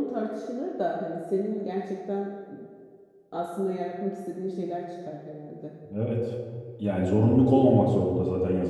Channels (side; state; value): both; identical; correlation 1.00